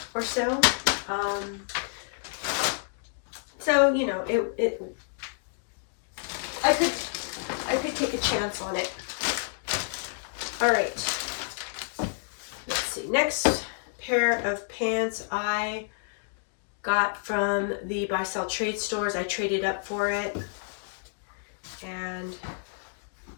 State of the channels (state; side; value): silent; right; digital silence